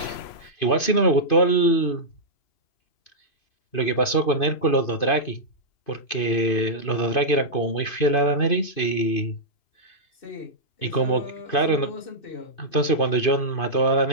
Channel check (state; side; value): late; right; 2.5 ms